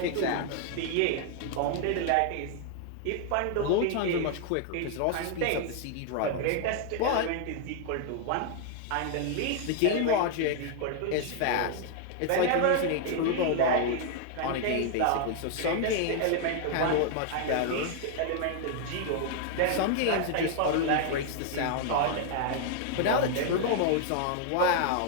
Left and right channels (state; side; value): different; both; correlation 0.00